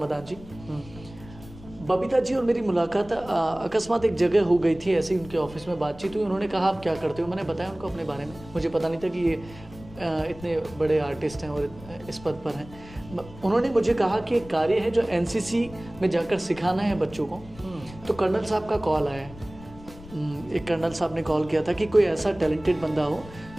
जी। बबीता जी और मेरी मुलाकात अकस्मात एक जगह हो गई थी, ऐसे ही उनके ऑफिस में बातचीत हुई, उन्होंने कहा आप क्या करते हो, मैंने बताया उनको अपने बारे में, मुझे पता नहीं था कि ये इतने बड़े आर्टिस्ट हैं और इस पद पर हैं। उन्होंने मुझे कहा कि एक कार्य है जो एनसीसी में जाकर सिखाना है बच्चों को, तो कर्नल साहब का कॉल आया है, एक कर्नल साहब ने कॉल किया था कि कोई ऐसा टैलेंटेड बंदा हो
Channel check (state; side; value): noise; left; rumble, 18 dB below the sound